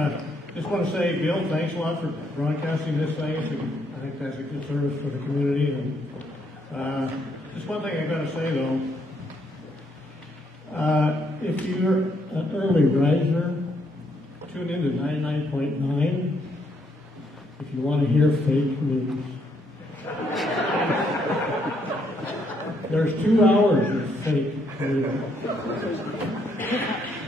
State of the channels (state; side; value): normal; both; correlation 0.73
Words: just want to say, Bill, thanks a lot for broadcasting this thing. I think that's a good service for the community. And just one thing I got to say though, if you're an early riser, tune in to 99.9 if you want to hear fake news. There's 2 hours of fake news.